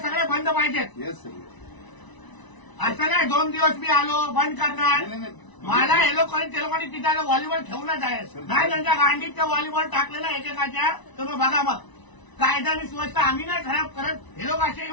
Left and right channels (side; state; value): right; late; 1.0 ms